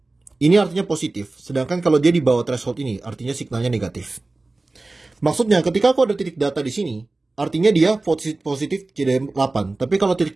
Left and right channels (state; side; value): quieter; left; 3.2 dB